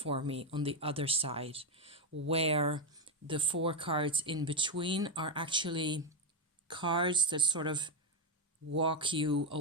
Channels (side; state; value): both; normal; correlation 0.07